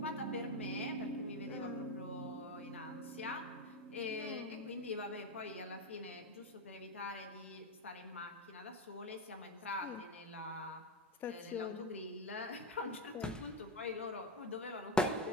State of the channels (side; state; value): both; normal; correlation 0.11